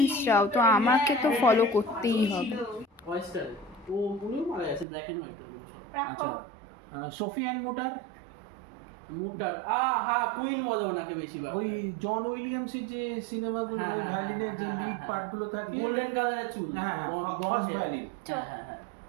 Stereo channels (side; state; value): left; drops out; at 4.9 s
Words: চাও তো আমাকে তো ফলো করতেই হবে। ওয়েস্টার্ন ও উনিও মারা গেছে, ব্ল্যাক এন্ড হোয়াইট এগুলো সব। আচ্ছা, সোফি অ্যান্ড মোটার, মুটার হ্যাঁ, কুইন বলে ওনাকে বেশিরভাগ। ওই জন উইলিয়ামসের যে সিনেমাগুলো, হ্যাঁ, ওই হ্যাঁ, ভ্যালিনের যে হ্যাঁ, লিড হ্যাঁ, পার্টগুলো থাকে, গোল্ডেন কালারের চুল। হ্যাঁ ফার্স্ট ভ্যালি। হ্যাঁ।